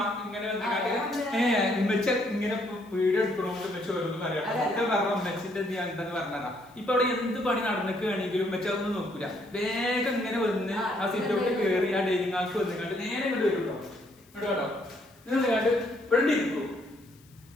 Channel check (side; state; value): left; noise; hiss, 29 dB below the sound